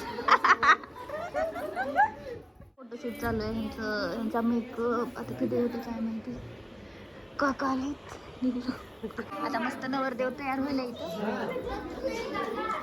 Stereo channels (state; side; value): identical; both; correlation 1.00